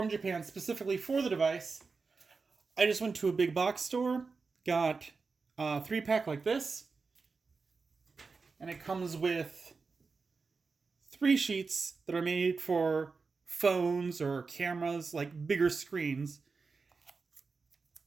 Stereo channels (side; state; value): left; quieter; 4.5 dB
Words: Japan specifically for the device. I just went to a big box store, got a 3-pack like this, and it comes with 3 sheets that are made for phones or cameras, like bigger screens.